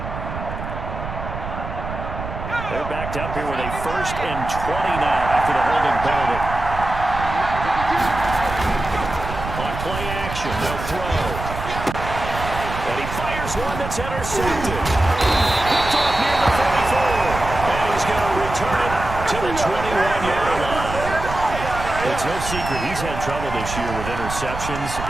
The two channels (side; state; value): right; noise; rumble, 8 dB below the sound